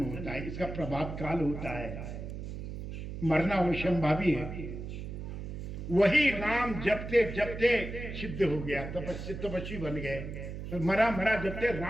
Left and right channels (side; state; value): right; noise; hum, 7 dB below the sound